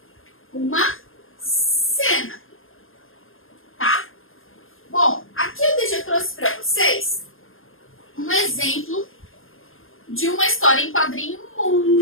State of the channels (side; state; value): right; late; 0.60 ms